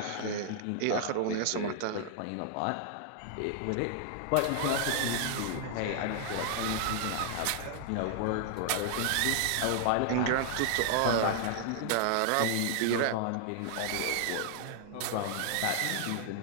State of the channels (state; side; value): different; both; correlation 0.00